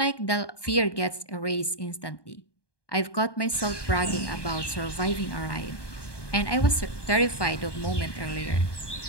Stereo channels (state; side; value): late; right; 1.2 ms